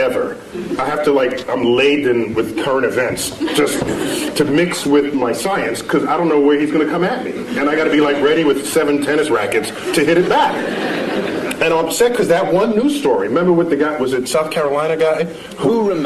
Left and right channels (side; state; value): both; identical; correlation 1.00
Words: I have to I'm laden with current events just to mix with my science because I don't know where he's going to come at me, and I got to be ready with 7 tennis rackets to hit it back. And I'm upset because that one news story. Remember with the guy? Was it South Carolina guy? Who